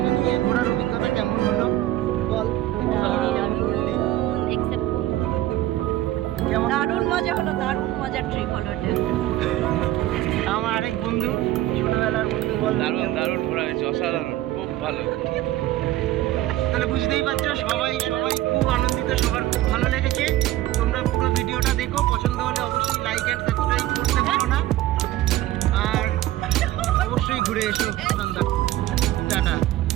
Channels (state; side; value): quieter; left; 15.0 dB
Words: নিই এই ঘোরার অভিজ্ঞতা কেমন হলো। বল, দারুণ মজা হলো, দারুণ মজার ট্রিপ হলো এটা। আমার আরেক বন্ধু, ছোটবেলার বন্ধু, বল। দারুণ দারুণ ঘোরা হয়েছে, অসাধারণ, খুব ভালো। তাহলে বুঝতেই পারছো, সবাই খুব আনন্দিত, সবার খুব ভালো লেগেছে। তোমরা পুরো ভিডিওটা দেখো, পছন্দ হলে অবশ্যই লাইক অ্যান্ড সাবস্ক্রাইব করতে ভুলো না। আর অবশ্যই ঘুরে এসো। টাটা।